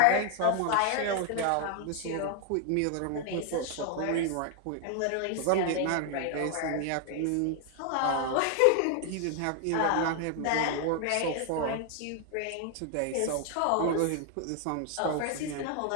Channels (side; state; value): both; different; correlation 0.00